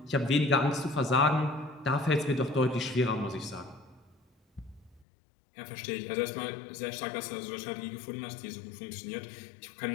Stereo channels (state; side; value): drops out; right; at 5.1 s